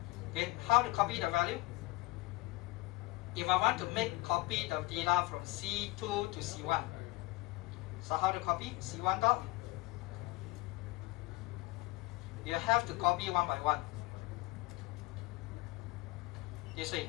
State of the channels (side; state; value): right; quieter; 21.6 dB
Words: Okay, how to copy the value? If I want to copy the data from C2 to C1, so how to copy? C1 dot. You have to copy one by one. This way.